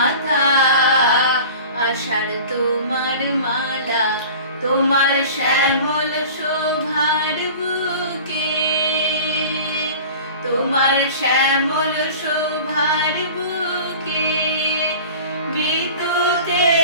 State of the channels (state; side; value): inverted; both; correlation -0.40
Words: আষাঢ় তোমার মালা, তোমার শ্যামল শোভার বুকে, তোমার শ্যামল শোভার বুকে